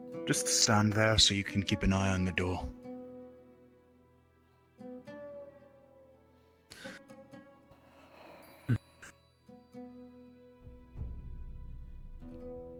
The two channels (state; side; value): identical; both; correlation 1.00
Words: Just stand there so you can keep an eye on the door.